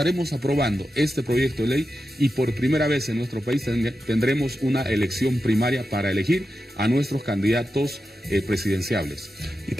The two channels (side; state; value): both; normal; correlation 0.90